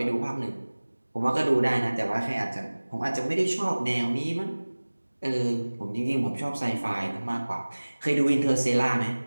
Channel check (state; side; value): inverted; both; correlation -1.00